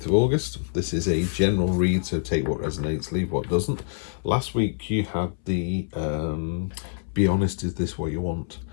of August. This is a general read, so take what resonates, leave what doesn't. Last week you had the be honest, is this what you want?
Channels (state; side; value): silent; right; 61 dB below the other